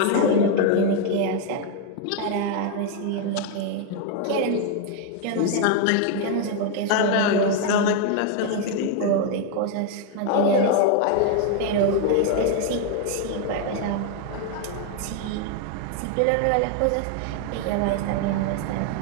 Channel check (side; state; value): both; different; correlation 0.01